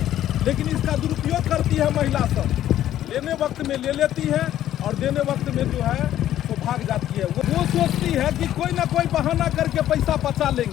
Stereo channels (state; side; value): quieter; right; 12.2 dB